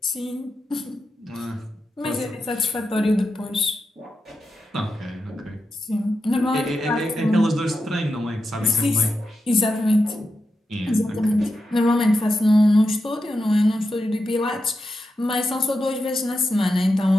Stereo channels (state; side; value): normal; both; correlation 0.88